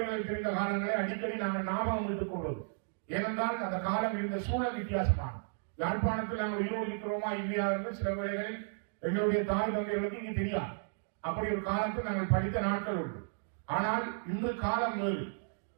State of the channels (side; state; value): left; silent; digital silence